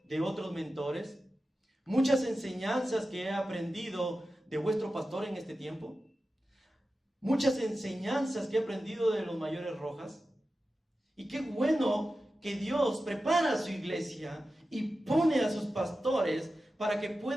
de otros mentores, muchas enseñanzas que he aprendido de vuestro pastor en este tiempo, muchas enseñanzas que he aprendido de los mayores Rojas. Y qué bueno que Dios prepara a su iglesia y pone a sus pastores para que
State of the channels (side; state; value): both; normal; correlation 0.93